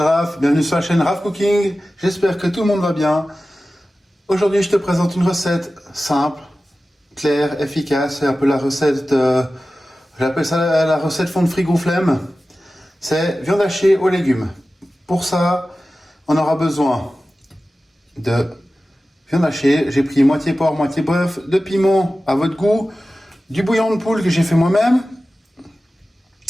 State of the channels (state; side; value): normal; both; correlation 0.95